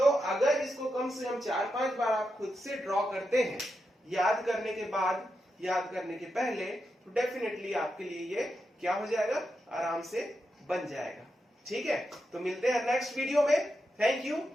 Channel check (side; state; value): both; normal; correlation 0.86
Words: अगर इसको कम से कम 4-5 बार आप खुद से ड्रॉ करते हैं, याद करने के बाद, याद करने के पहले, तो डेफिनेटली आपके लिए ये क्या हो जाएगा, आराम से बन जाएगा, ठीक है। तो मिलते हैं नेक्स्ट वीडियो में। Thank you,